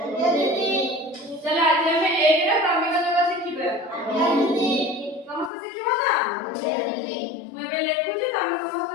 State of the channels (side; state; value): right; drops out; at 5.5 s